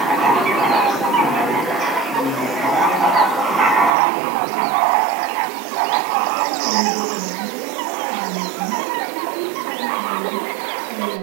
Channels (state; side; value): drops out; left; at 4.0 s